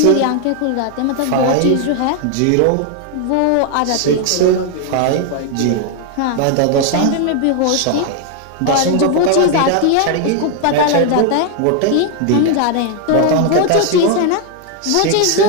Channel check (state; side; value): different; both; correlation 0.00